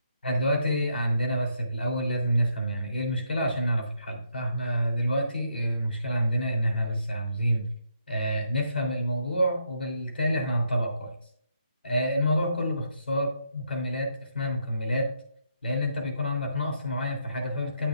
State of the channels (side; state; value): both; inverted; correlation -0.76